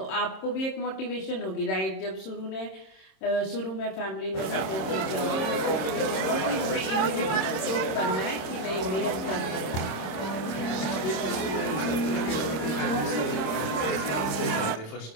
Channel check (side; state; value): right; late; 26 ms